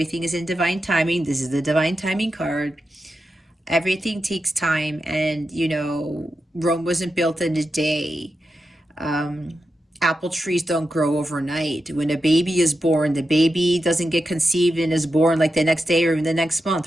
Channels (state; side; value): normal; both; correlation 0.89